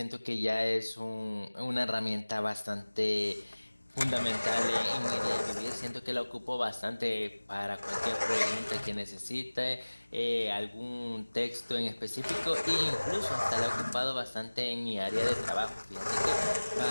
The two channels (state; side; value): inverted; both; correlation -1.00